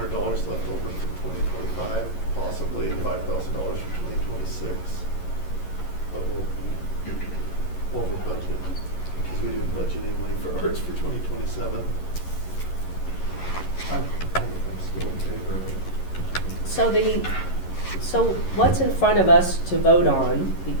left over from 2025, possibly $5,000 from 2026? But we'll be over budget because we didn't budget any money for arts for 2027. I'm still in favor of it. So what's in front of us to vote on,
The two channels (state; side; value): late; right; 11 ms